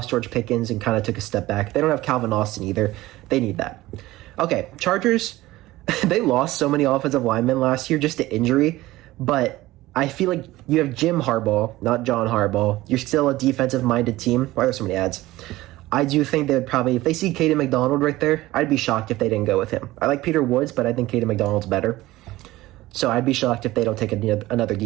George Pickens and kind of took a step back. They don't have Calvin Austin either. They need that. Okay, Chargers, they lost so many offensive linemen last year just to injury, but I feel like you have Jim Harbaugh, not John Harbaugh. You're still a defensive-minded team. Why are there so many ads? I do think they would probably, if they see Caden McDonald right there, I'd be shocked if they didn't go with him. I like Peter Woods, but I think Caden McDonald's better. So I'd be shocked if they don't take another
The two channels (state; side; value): quieter; left; 17.6 dB